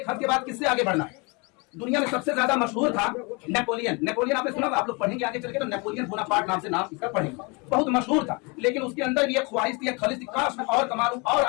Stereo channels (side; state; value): right; quieter; 29.7 dB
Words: हद के बाद किससे आगे बढ़ना है। दुनिया में सबसे ज्यादा मशहूर था नेपोलियन। नेपोलियन आपने सुना, आप लोग पढ़ेंगे आगे चल के तो नेपोलियन बोनापार्ट नाम से नाम इसका पढ़ेंगे, बहुत मशहूर था। लेकिन उसके अंदर भी एक ख्वाहिश थी, एक खलिश थी, काश मैं और कमा लूं और